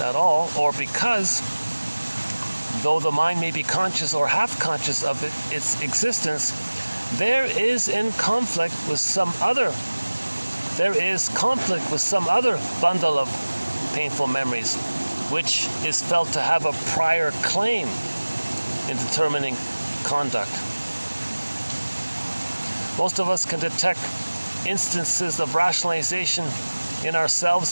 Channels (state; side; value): inverted; both; correlation -1.00